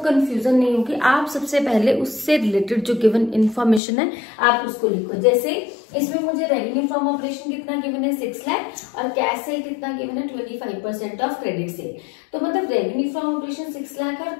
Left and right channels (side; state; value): right; drops out; at 3.8 s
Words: नहीं होगी, आप सबसे पहले उससे रिलेटेड जो गिवन इन्फॉर्मेशन है आप उसको लिखो। जैसे इसमें मुझे रेवेन्यू फ्रॉम ऑपरेशन कितना गिवन है? 6 लाख, और कैश सेल कितना गिवन है? 25% ऑफ क्रेडिट सेल। तो मतलब रेवेन्यू फ्रॉम ऑपरेशन 6 लाख है और